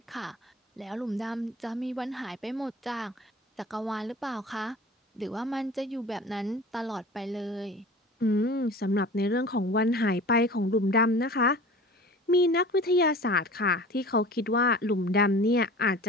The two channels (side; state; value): both; normal; correlation 0.40